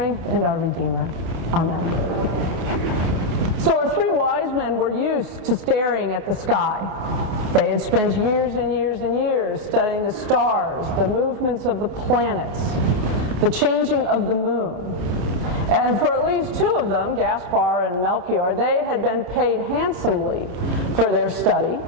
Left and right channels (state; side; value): late; left; 28 ms